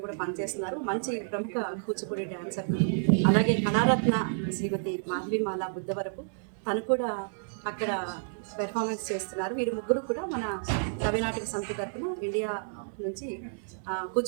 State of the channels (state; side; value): silent; left; digital silence